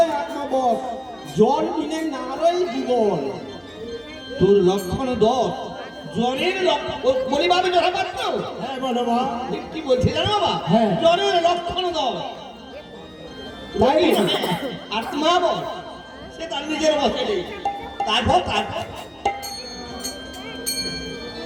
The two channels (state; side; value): identical; both; correlation 1.00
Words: 1 নম্বর, জল বিনে নারই জীবন। তোর লক্ষণ 10, জ্বরের লক্ষণ বলি বাবা জরা পাত্র। হ্যাঁ বলো মা। কি বলছে জানো বাবা? হ্যাঁ। জ্বরের লক্ষণ 10। তাই আর মা বল, সে তার নিজের বসে নেই। তারপর